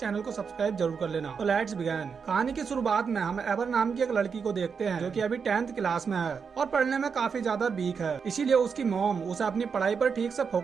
को सब्सक्राइब जरूर कर लेना। तो लेट्स बिगिन। कहानी की शुरुआत में हम एवर नाम की एक लड़की को देखते हैं, जो कि अभी 10th क्लास में है और पढ़ने में काफी ज्यादा वीक है। इसीलिए उसकी मॉम उसे अपनी पढ़ाई पर ठीक से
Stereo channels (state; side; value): quieter; left; 6.0 dB